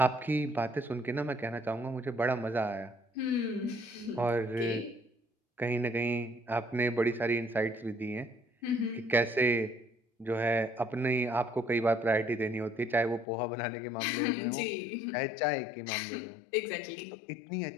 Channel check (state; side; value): drops out; right; at 13.2 s